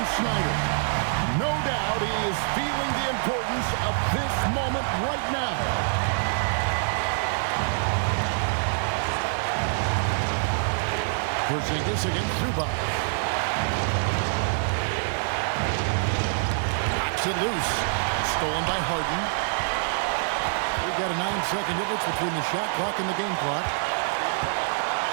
Snyder. No doubt he is feeling the importance of this moment right now. Porzingis against Zubac. Knocks it loose. Stolen by Harden. We've got a 9-second difference between the shot clock and the game clock.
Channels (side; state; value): left; silent; digital silence